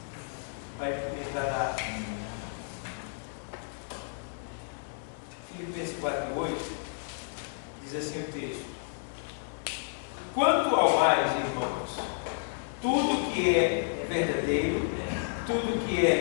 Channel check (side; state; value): right; silent; digital silence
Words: Vai entrar na Filipenses 4 e 8. Diz assim o texto: quanto ao mais, irmãos, tudo que é verdadeiro, tudo que